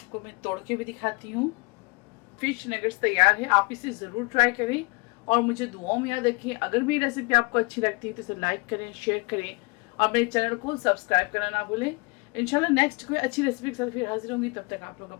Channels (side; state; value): right; quieter; 28.8 dB